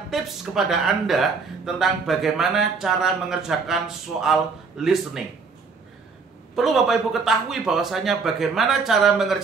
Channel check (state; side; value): quieter; left; 4.8 dB